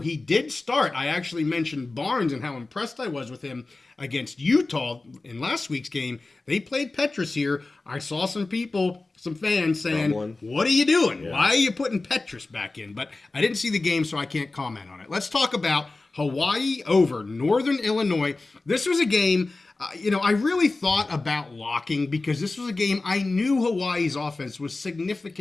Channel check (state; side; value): quieter; right; 3.3 dB